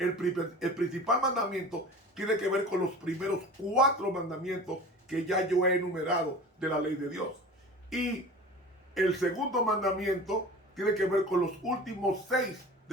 principal mandamiento tiene que ver con los primeros 4 mandamientos que ya yo he enumerado de la ley de Dios. Y el segundo mandamiento tiene que ver con los últimos 6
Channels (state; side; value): normal; both; correlation 0.37